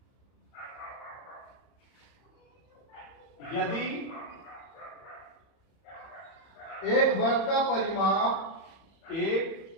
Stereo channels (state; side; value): late; right; 31 ms